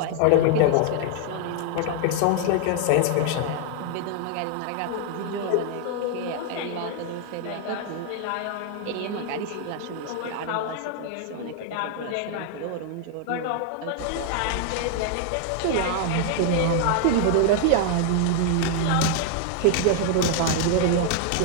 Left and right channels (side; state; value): both; different; correlation 0.00